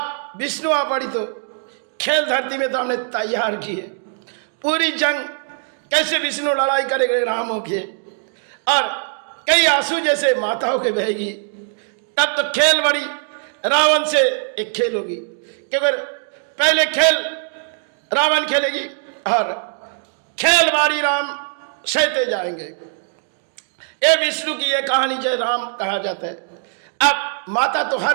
विष्णु आ पड़ी तो खेल धरती में तो हमने तैयार किए। पूरी जंग कैसे विष्णु लड़ाई करेंगे रामों के, और कई आंसू जैसे माताओं के बहेगी। तब तो खेल बड़ी रावण से एक खेल होगी, क्योंकि पहले खेल रावण खेलेगी और खेल बारी राम सहते जाएंगे। ये विष्णु की ये कहानी जय राम कहा जाता है। अब माता तो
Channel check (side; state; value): left; silent; digital silence